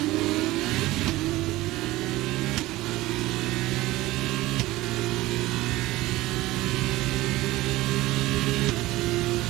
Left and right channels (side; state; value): left; quieter; 18.2 dB